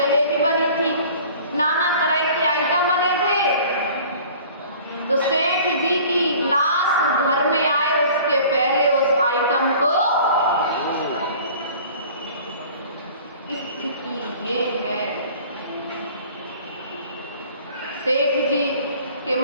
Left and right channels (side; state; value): both; inverted; correlation -0.47